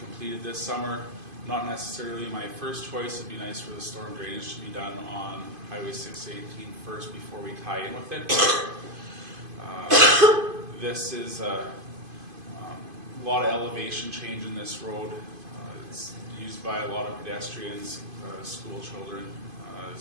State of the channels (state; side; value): late; left; 2.5 ms